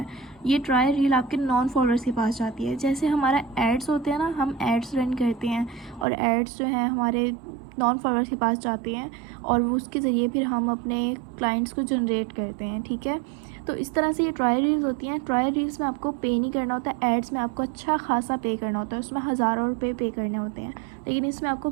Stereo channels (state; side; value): drops out; left; at 6.1 s